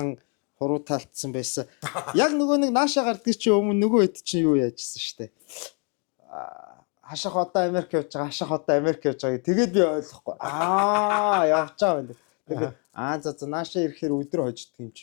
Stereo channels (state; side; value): quieter; right; 37.1 dB